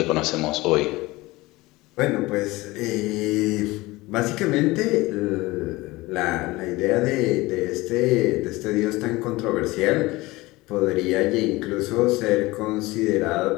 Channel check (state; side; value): quieter; right; 20.6 dB